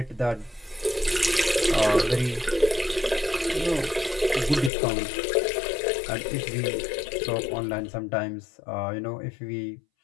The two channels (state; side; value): drops out; right; at 4.7 s